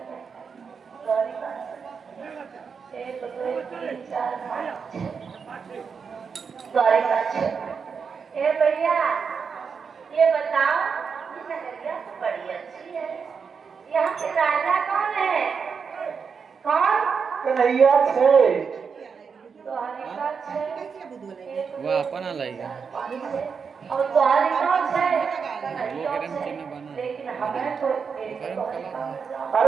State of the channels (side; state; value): left; quieter; 5.9 dB